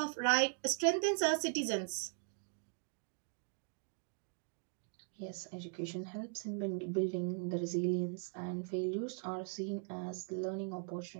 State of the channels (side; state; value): left; silent; 51 dB below the other